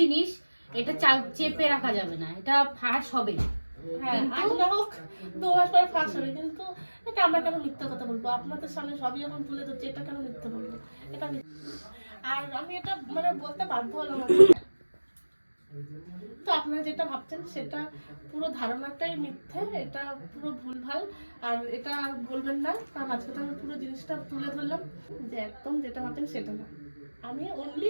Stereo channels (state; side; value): inverted; both; correlation -1.00